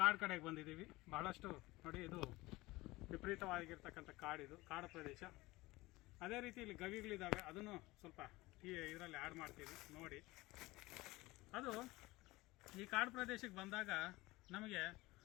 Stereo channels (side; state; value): right; quieter; 20.3 dB